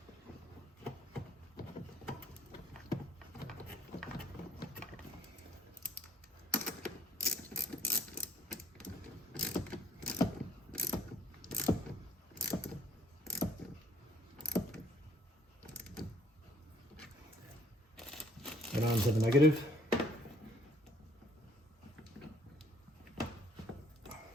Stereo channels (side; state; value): both; normal; correlation 0.61